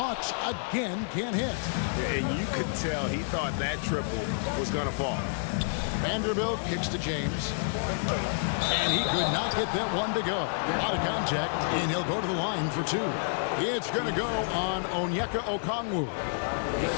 again can't hit. And you could tell he thought that triple was going to fall. Vanderbilt kicks to James. And he could not get that one to go. A lot of contact, and he'll go to the line for 2. It's going to go on Onyeka Okongwu.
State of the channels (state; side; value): silent; right; digital silence